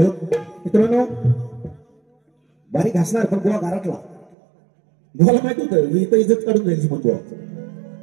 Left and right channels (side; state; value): left; drops out; at 4.2 s